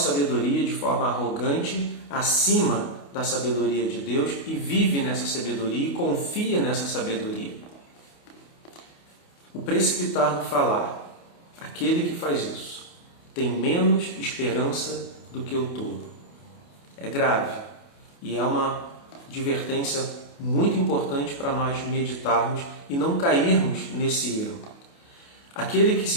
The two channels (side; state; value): right; late; 28 ms